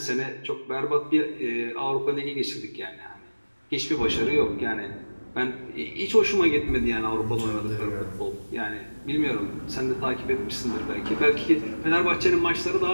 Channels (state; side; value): inverted; both; correlation -1.00